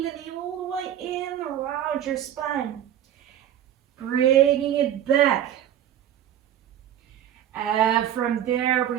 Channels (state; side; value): quieter; left; 10.8 dB